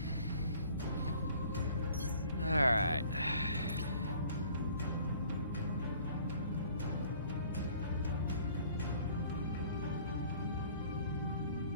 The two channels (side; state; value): both; inverted; correlation -0.54